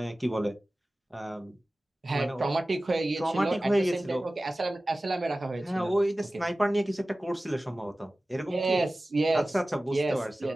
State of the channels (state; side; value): normal; both; correlation 0.96